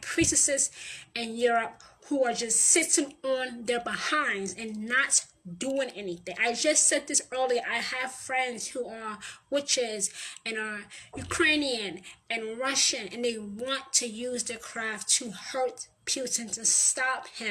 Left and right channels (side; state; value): both; identical; correlation 1.00